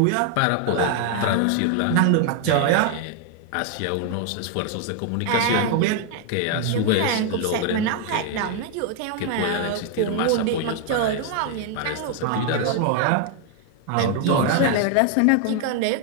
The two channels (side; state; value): both; different; correlation 0.00